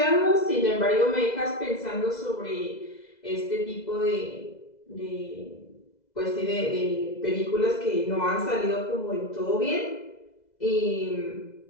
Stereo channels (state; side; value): late; right; 2.0 ms